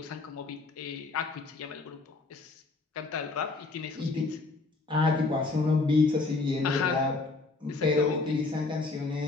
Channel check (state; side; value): quieter; right; 3.6 dB